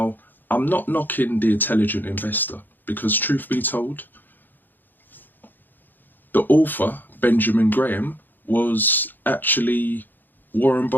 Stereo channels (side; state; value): right; late; 0.090 ms